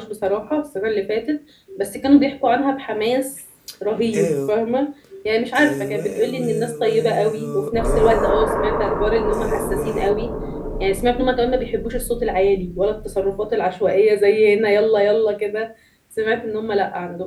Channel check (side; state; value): both; identical; correlation 1.00